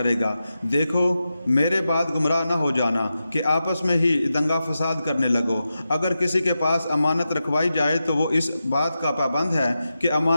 گا۔ دیکھو، میرے بعد گمراہ نہ ہو جانا کہ آپس میں ہی دنگا فساد کرنے لگو۔ اگر کسی کے پاس امانت رکھوائی جائے تو وہ اس بات کا پابند ہے کہ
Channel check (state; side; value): inverted; both; correlation -0.90